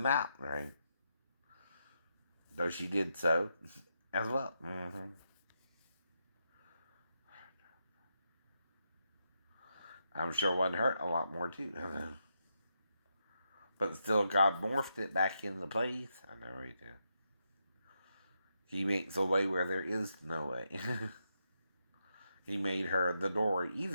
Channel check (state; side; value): inverted; both; correlation -0.83